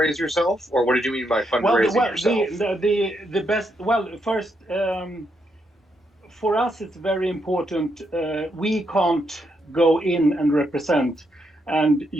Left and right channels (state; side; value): normal; both; correlation 0.79